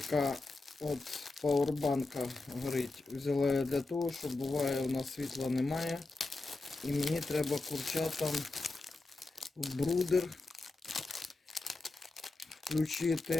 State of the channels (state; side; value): quieter; right; 3.3 dB